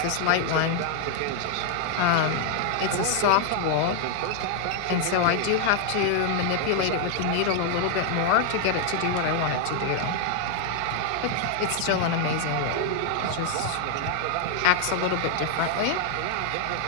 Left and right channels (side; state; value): both; different; correlation 0.00